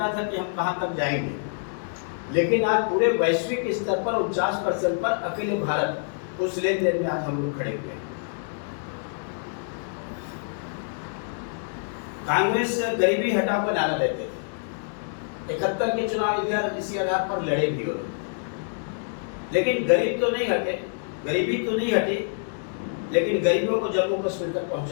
था कि हम कहां तक जाएंगे, लेकिन आज पूरे वैश्विक स्तर पर 49% पर अकेले भारत उस लेन देन में आज हम लोग खड़े हुए। कांग्रेस गरीबी हटाओ का नारा देते थे, 71 के चुनाव इसी आधार पर लड़े भी हो, लेकिन गरीब तो नहीं हटे, गरीबी तो नहीं हटी, लेकिन गरीबों को जम्मू कश्मीर तक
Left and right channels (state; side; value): silent; right; digital silence